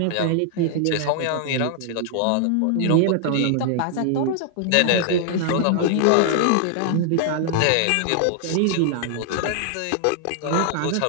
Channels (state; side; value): different; both; correlation 0.00